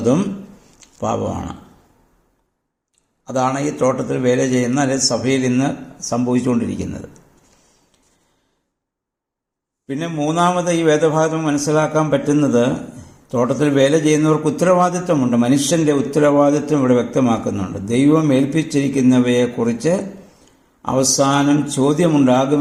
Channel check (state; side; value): identical; both; correlation 1.00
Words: പാപമാണ്. അതാണ് ഈ തോട്ടത്തിൽ വേല ചെയ്യുന്ന അല്ലെങ്കിൽ സഭയിൽ ഇന്ന് സംഭവിച്ചുകൊണ്ടിരിക്കുന്നത്. പിന്നെ മൂന്നാമത് ഈ വേദഭാഗം മനസ്സിലാക്കാൻ പറ്റുന്നത്, തോട്ടത്തിൽ വേല ചെയ്യുന്നവർക്ക് ഉത്തരവാദിത്വമുണ്ട്. മനുഷ്യൻ്റെ ഉത്തരവാദിത്വം ഇവിടെ വ്യക്തമാക്കുന്നുണ്ട്. ദൈവം ഏൽപ്പിച്ചിരിക്കുന്നവയെക്കുറിച്ച് അവസാനം